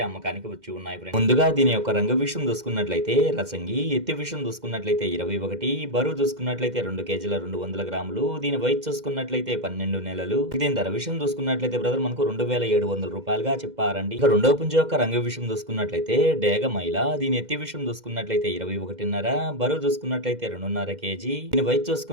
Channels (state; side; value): late; left; 2.1 ms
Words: అమ్మకానికి వచ్చి ఉన్నాయి ఫ్రెండ్స్. ముందుగా దీని యొక్క రంగు విషయం చూసుకున్నట్లయితే రసంగి, ఎత్తి విషయం చూసుకున్నట్లయితే 21, బరువు చూసుకున్నట్లయితే 2 కేజీల 200 గ్రాములు, దీని వయసు చూసుకున్నట్లయితే 12 నెలలు. దీని ధర విషయం చూసుకున్నట్లయితే బ్రదర్ మనకు 2700 రూపాయలుగా చెప్పారండి. ఇక రెండవ పుంజు యొక్క రంగు విషయం చూసుకున్నట్లయితే డేగ మైల, దీని ఎత్తి విషయం చూసుకున్నట్లయితే 21.5, బరువు చూసుకున్నట్లయితే 2.5 కేజీ, దీని వయసు